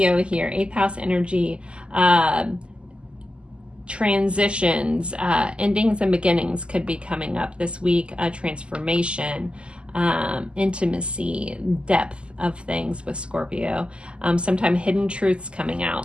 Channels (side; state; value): left; late; 0.052 ms